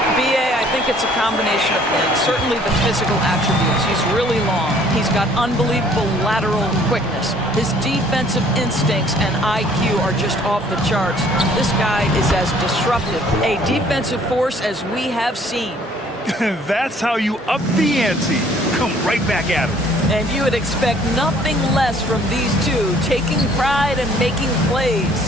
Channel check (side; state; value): both; normal; correlation 0.58